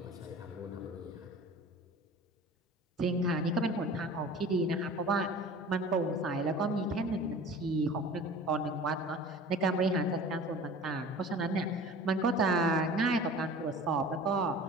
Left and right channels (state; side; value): normal; both; correlation 0.41